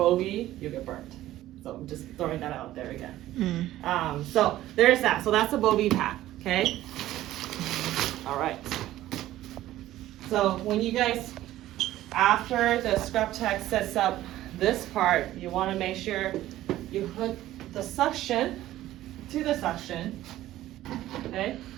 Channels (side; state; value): left; quieter; 14.5 dB